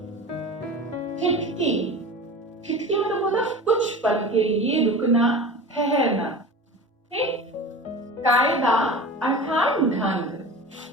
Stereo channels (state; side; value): normal; both; correlation 0.34